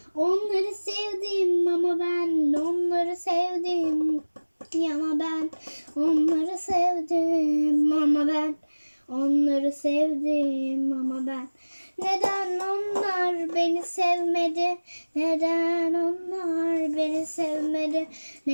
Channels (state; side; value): inverted; both; correlation -1.00